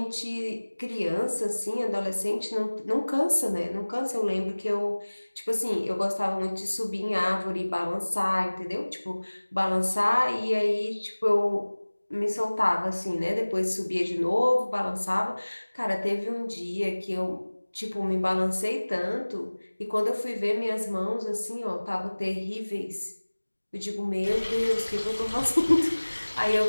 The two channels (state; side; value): inverted; both; correlation -1.00